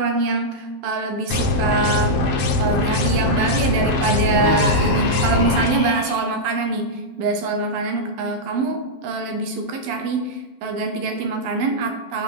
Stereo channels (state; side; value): late; left; 12 ms